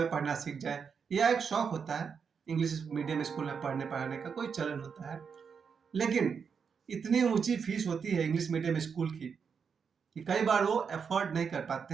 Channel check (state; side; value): quieter; left; 6.3 dB